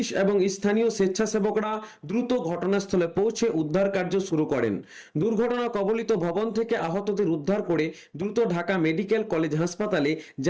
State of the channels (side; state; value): both; identical; correlation 1.00